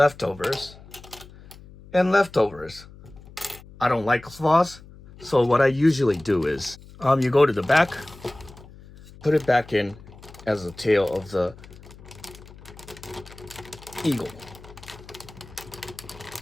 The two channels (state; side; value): noise; left; hum, 20 dB below the sound